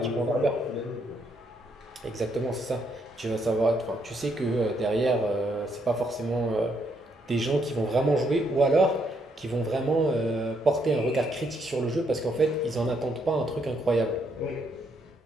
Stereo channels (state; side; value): normal; both; correlation 0.74